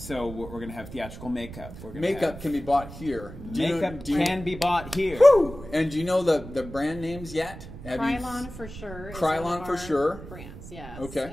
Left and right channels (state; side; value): noise; right; rumble, 13 dB below the sound